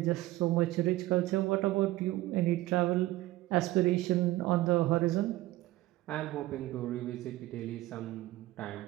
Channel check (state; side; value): quieter; left; 17.1 dB